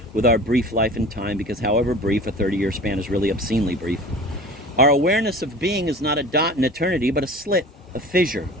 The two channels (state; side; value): normal; both; correlation 0.39